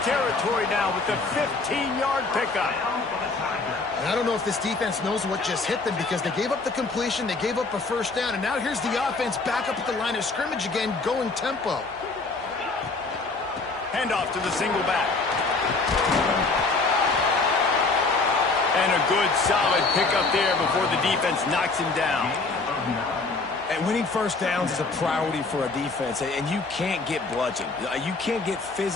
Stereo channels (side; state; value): right; quieter; 3.7 dB